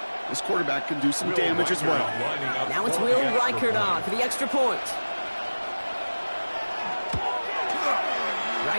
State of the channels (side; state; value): both; inverted; correlation -1.00